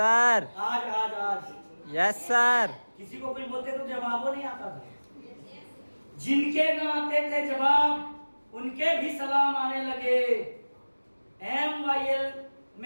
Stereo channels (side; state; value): both; inverted; correlation -1.00